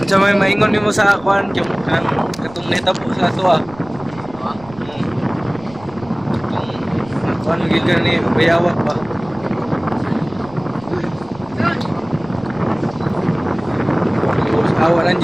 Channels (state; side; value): noise; right; rumble, 20 dB below the sound